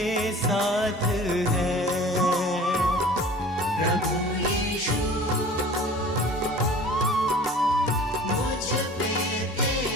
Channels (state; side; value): normal; both; correlation 0.44